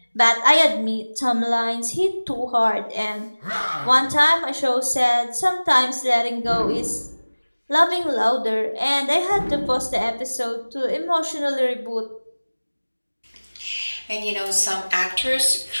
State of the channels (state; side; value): inverted; both; correlation -1.00